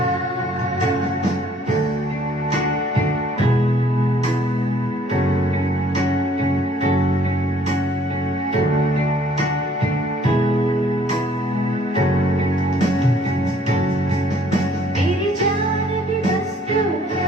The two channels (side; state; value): both; normal; correlation 0.60